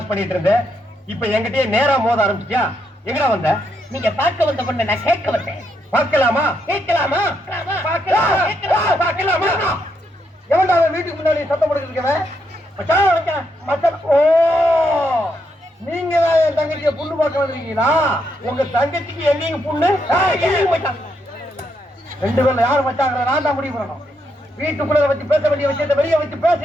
பண்ணிட்டு இருந்தேன். இப்ப என்கிட்டயே நேரா மோத ஆரம்பிச்சியா? எங்கடா வந்த? நீங்க பார்க்க வந்த பொண்ணு நான் கேட்க வந்தேன். பார்க்கலாமா? கேட்கலாமா? பார்க்கலாமா? எவன்டா அவன் வீட்டுக்கு முன்னாடி சத்தம் போட்டுருக்கவன்? ஓ, நீங்க தான் என் தங்கச்சிய புண்ணு பார்க்க வந்திருக்கீங்களா? உங்க தங்கச்சிக்கு என்னைக்கு புண்ணு? ரெண்டு பேர்ல யாரு மச்சாங்க? நான் தான் முடிவு பண்ணணும். வீட்டுக்குள்ள வச்சு பேச வேண்டிய விஷயத்தை வெளியே வச்சு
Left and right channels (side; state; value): both; normal; correlation 0.78